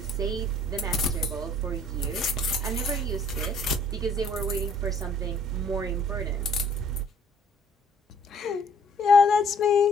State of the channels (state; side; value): normal; both; correlation 0.59